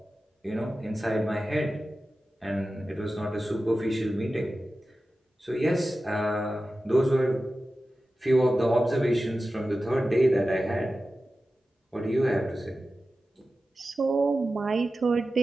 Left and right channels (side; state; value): both; normal; correlation 0.94